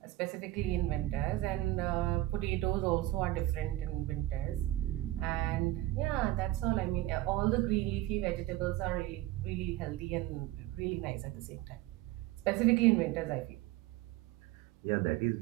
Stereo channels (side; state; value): left; quieter; 16.3 dB